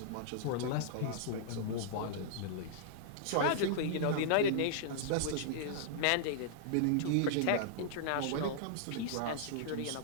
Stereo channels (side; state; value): both; different; correlation -0.01